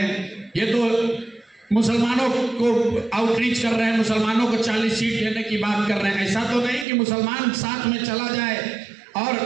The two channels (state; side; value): drops out; left; at 6.9 s